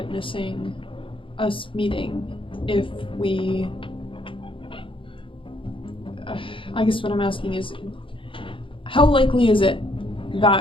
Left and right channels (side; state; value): right; late; 0.25 ms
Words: us meeting if we... I guess what I'm asking is, how likely is it